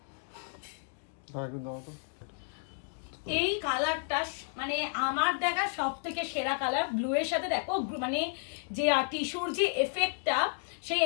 এই কালারটা মানে আমার দেখা সব থেকে সেরা কালার। ব্লু এর সাথে দেখো মানে যে টিস্যুর যে এফেক্টটা, সেই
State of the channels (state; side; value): silent; right; 56 dB below the other